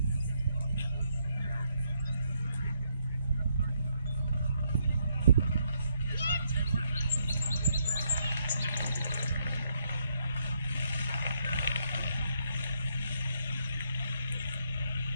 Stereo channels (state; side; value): inverted; both; correlation -0.75